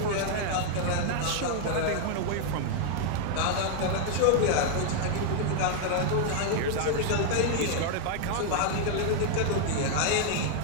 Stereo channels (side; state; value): both; different; correlation 0.00